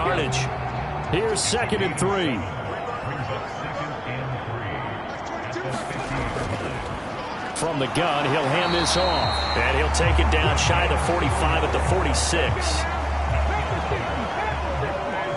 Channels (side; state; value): both; identical; correlation 1.00